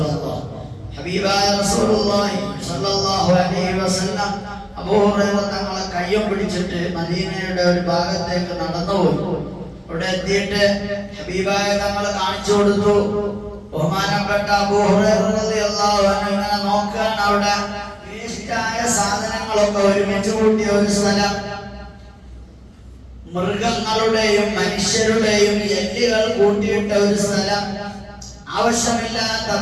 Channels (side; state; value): both; identical; correlation 1.00